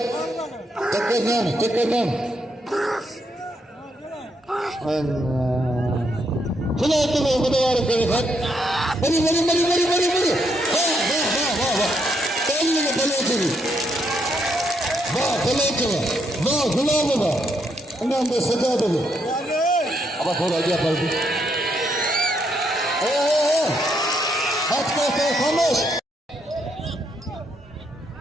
टक्कर नाम चलो तुम बुधवार करे खत मरी वाह ताली में बलोच वाह बलोच वाह गुलाब वाह इनाम में सजा दो अब थोड़ा आगे पलटी हाथ को खामोश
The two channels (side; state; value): both; normal; correlation 0.76